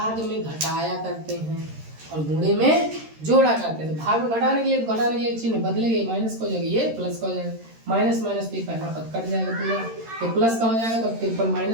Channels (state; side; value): late; left; 13 ms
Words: में घटाया करते हैं और गुणे में जोड़ा करते हैं। तो भाग में घटाने के लिए चिन्ह बदलेंगे, माइनस का हो जाएगा, ये प्लस का हो जाएगा, माइनस माइनस भी पहला पद कट जाएगा पूरा, तो प्लस का हो जाएगा। तो 53